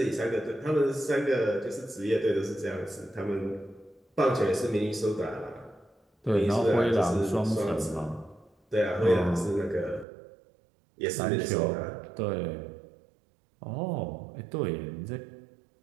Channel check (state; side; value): drops out; left; at 10.1 s